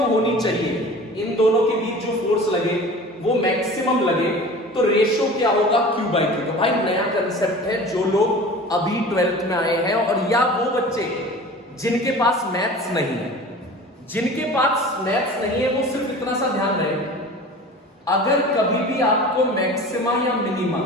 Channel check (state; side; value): normal; both; correlation 0.39